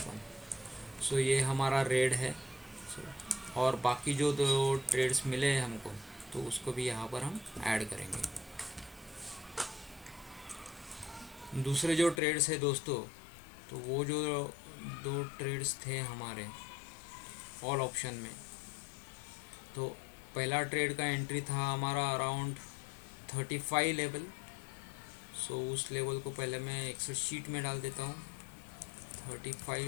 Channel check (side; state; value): right; drops out; at 12.2 s